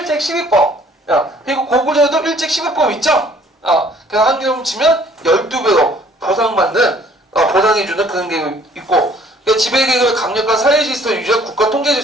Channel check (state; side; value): normal; both; correlation 0.57